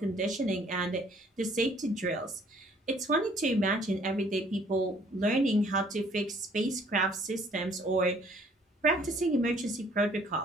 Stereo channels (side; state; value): both; normal; correlation 0.59